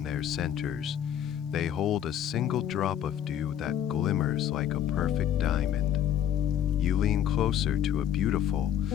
their centers, they hold a single drop of dew that glimmers like a perfect diamond. You lean closer to a beautiful,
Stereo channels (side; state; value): right; quieter; 10.2 dB